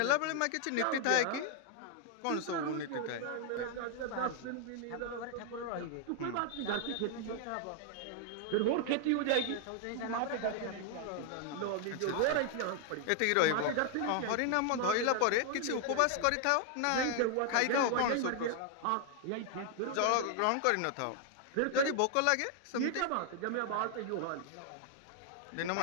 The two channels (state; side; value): different; both; correlation 0.00